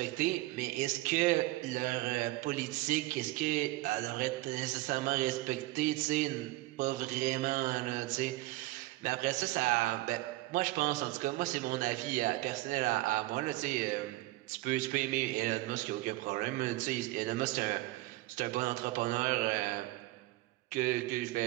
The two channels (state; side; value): quieter; left; 19.0 dB